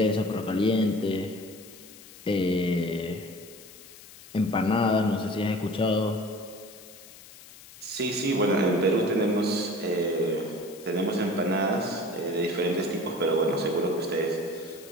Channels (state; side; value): noise; left; hiss, 19 dB below the sound